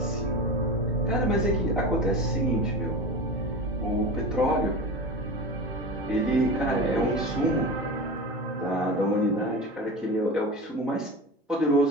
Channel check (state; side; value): normal; both; correlation 0.28